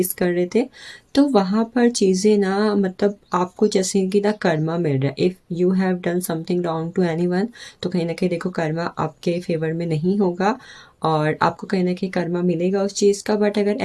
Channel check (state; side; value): identical; both; correlation 1.00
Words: कर रहे थे। तो वहाँ पर चीज़ें ना, मतलब आपको जैसे कि ना कर्मा मिल रहा है। If you have done something wrong to anyone, तो कहीं ना कहीं देखो कर्मा आपके फेवर में नहीं होगा और आपको कहीं ना कहीं कर्मा मिलेगा उस चीज़ का। बट अगर